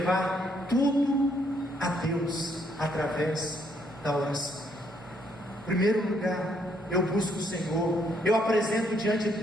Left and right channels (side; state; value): both; normal; correlation 0.71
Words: tudo a Deus através da oração. Em primeiro lugar, eu busco o Senhor, eu apresento diante